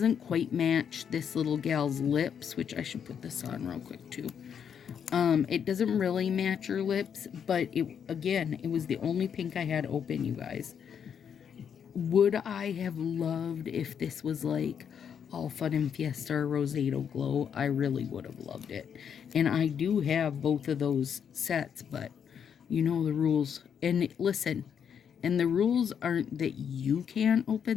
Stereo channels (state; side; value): quieter; right; 7.8 dB